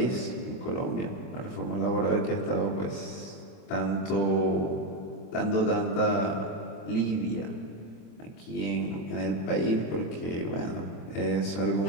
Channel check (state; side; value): late; right; 26 ms